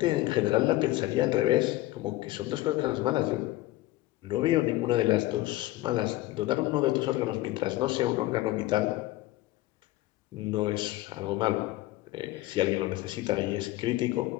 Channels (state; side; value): quieter; right; 17.5 dB